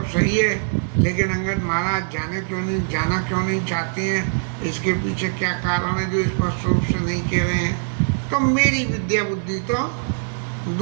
सही है, लेकिन अंगद महाराज जाना क्यों नहीं चाहते हैं, इसके पीछे क्या कारण है जो स्पष्ट रूप से नहीं कह रहे हैं। तो मेरी विद्या बुद्धि तो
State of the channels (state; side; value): silent; left; 64 dB below the other